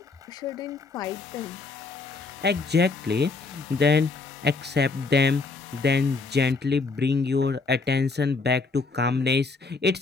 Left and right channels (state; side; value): quieter; right; 4.1 dB